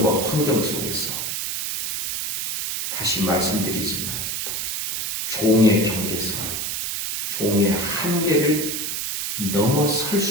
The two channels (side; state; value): right; noise; hiss, 2 dB below the sound